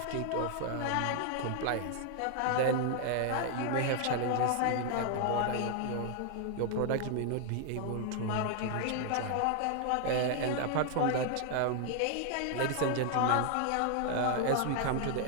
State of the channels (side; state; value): both; different; correlation 0.00